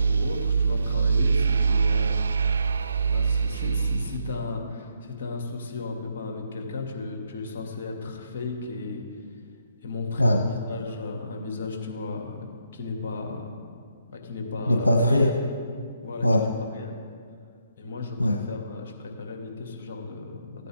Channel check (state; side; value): inverted; both; correlation -0.79